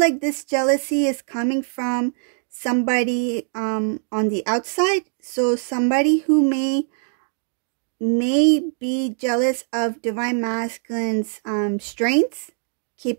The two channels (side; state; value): left; silent; 60 dB below the other